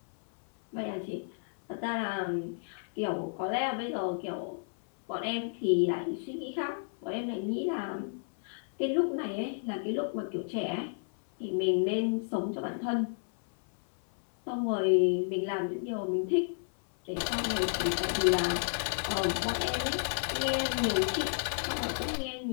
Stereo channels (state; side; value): silent; right; 57 dB below the other